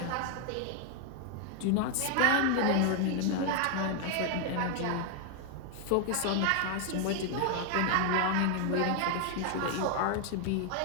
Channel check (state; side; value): different; both; correlation 0.00